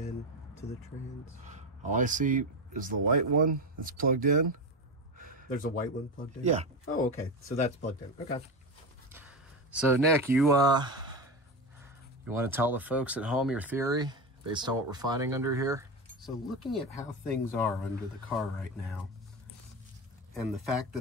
to the trans? All I see is the white one that's plugged in. There's a white one plugged in? Yeah. Oh, okay. So that's plugged in. Okay. So Nick, you want to tell the folks at home your theory based on what we're finding under here? So looking at how things are under the car right now, and the fact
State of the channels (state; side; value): normal; both; correlation 0.18